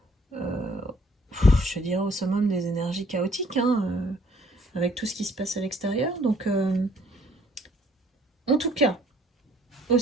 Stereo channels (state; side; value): normal; both; correlation 0.61